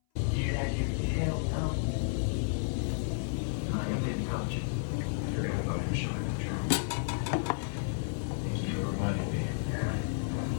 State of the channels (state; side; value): silent; right; 56 dB below the other